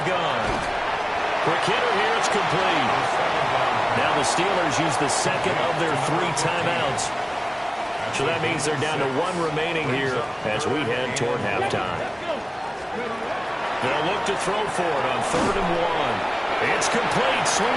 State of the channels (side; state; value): both; identical; correlation 1.00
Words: gun. Quick hitter here, it's complete. Now the Steelers use the 2nd of their 3 timeouts. So that means they're down to 1 remaining here as we head toward halftime. They'll look to throw for it on 3rd and 1. It's complete,